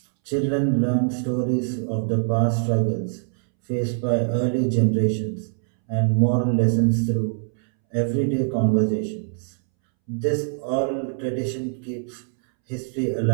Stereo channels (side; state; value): left; silent; 63 dB below the other